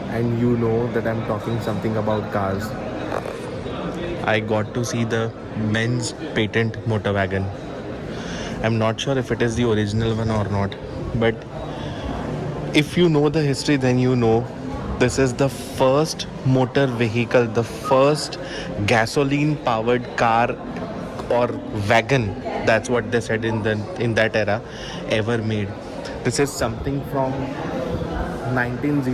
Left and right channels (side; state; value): both; identical; correlation 1.00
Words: and you know that I'm talking something about cars. I got to see the Benz patent motor wagon. I'm not sure if it is the original one or not, but if you know the history, then you know this is the first motor vehicle, the first gasoline powered car or wagon, that's what they said in that era, ever made. This is something from